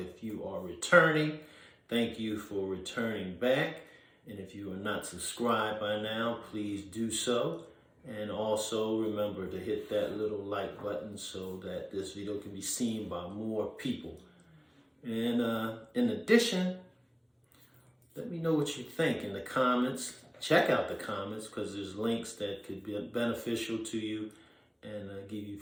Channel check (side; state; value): both; identical; correlation 1.00